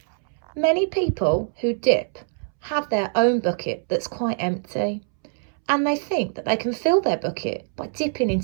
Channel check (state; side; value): silent; left; 63 dB below the other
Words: Many people who dip have their own bucket that's quite empty, and they think that they can fill their bucket by dipping